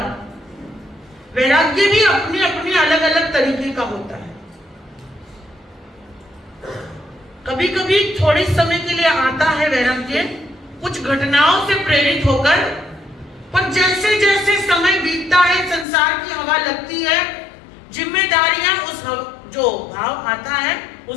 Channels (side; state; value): right; drops out; at 15.9 s